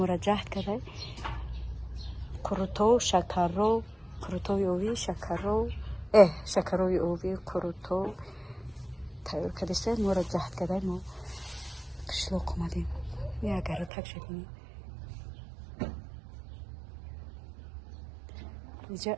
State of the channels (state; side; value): drops out; left; at 13.9 s